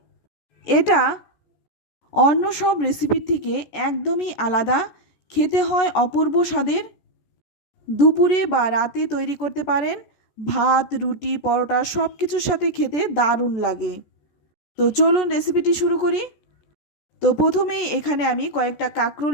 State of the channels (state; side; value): late; right; 14 ms